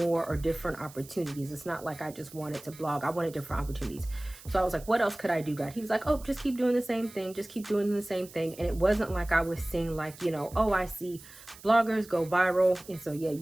or different opportunities. It's not like I just wanted to blog. I wanted different opportunities. So I was like, what else could I do, God? He was like, oh, just keep doing the same thing. Just keep doing the same thing. And it wasn't like I was seeing like, you know, oh, I see bloggers go viral. And so, yeah,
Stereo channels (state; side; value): noise; right; hiss, 19 dB below the sound